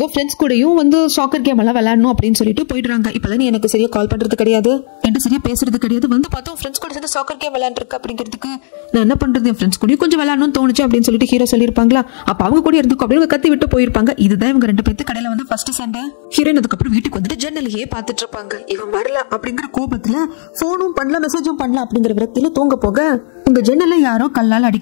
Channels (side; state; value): right; silent; digital silence